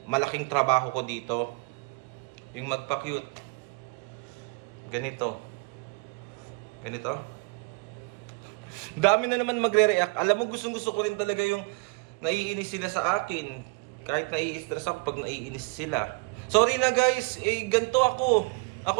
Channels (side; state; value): left; quieter; 29.3 dB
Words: malaking trabaho ko dito? Yung magpa-cute. Ganito. Dami na naman magre-react. Alam mo, gustong-gusto ko rin talaga yung naiinis sila sa akin. Kahit nai-stress ako pag naiinis sila. Sorry na guys, ganito ako.